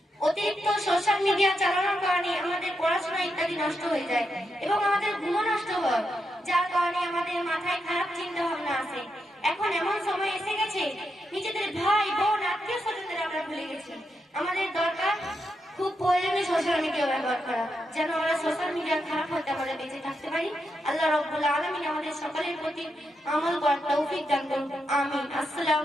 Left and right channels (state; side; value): normal; both; correlation 0.84